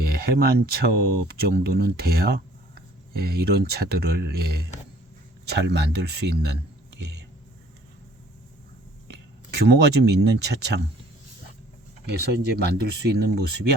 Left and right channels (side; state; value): both; normal; correlation 0.56